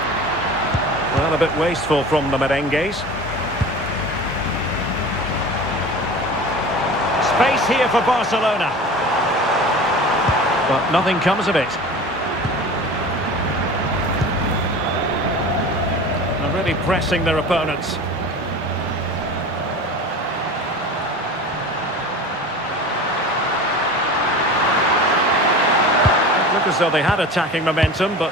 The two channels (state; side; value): normal; both; correlation 0.36